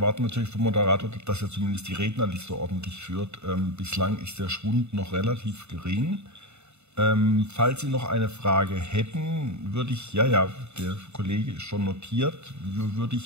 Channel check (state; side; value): late; left; 0.81 ms